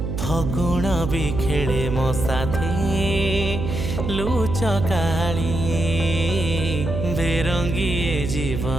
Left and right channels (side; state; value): right; noise; hum, 3 dB below the sound